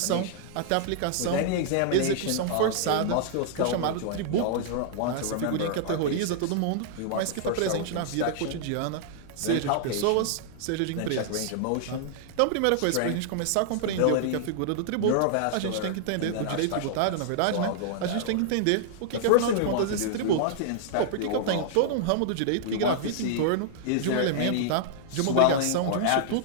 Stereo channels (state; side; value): different; both; correlation -0.01